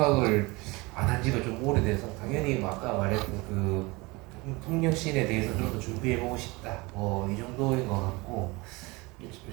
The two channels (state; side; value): quieter; left; 24.3 dB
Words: 안 한 지가 좀 오래돼서 당연히 뭐 아까 말했던 그 통역씬에 대해서 좀 더 준비해보고 싶다. 뭐 이 정도인 것 같고